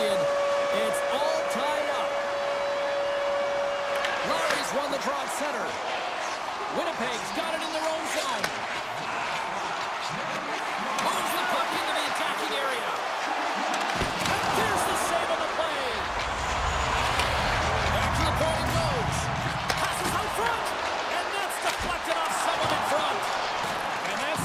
It's all tied up. Larry's won the draw at center. Winnipeg's got it in their own zone. Moves the puck into the attacking area. And there's the save on the play. Back to the point it goes. Passes out front. And that's deflected off someone in front. And that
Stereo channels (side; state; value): both; identical; correlation 1.00